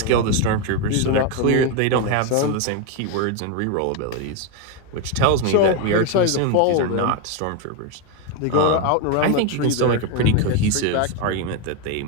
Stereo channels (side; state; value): both; different; correlation 0.02